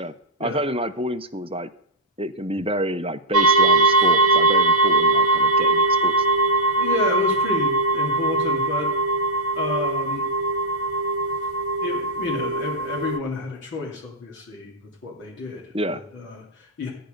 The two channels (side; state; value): both; normal; correlation -0.08